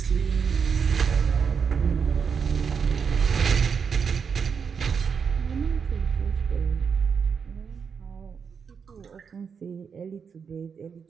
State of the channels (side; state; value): left; quieter; 6.3 dB